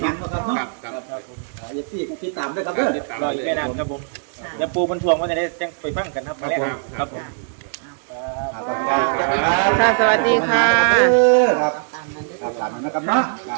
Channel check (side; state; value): left; silent; digital silence